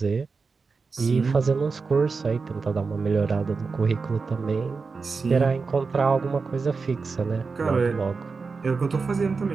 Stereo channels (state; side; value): quieter; left; 4.7 dB